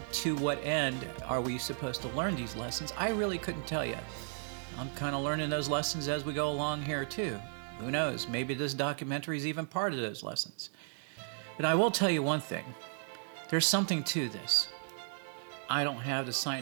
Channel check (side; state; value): left; silent; 55 dB below the other